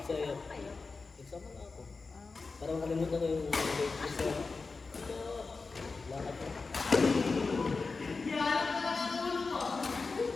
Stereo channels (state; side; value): quieter; right; 4.2 dB